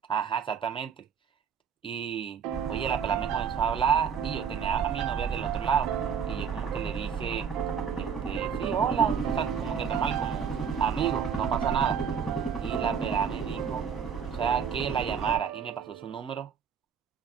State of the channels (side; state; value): left; quieter; 7.1 dB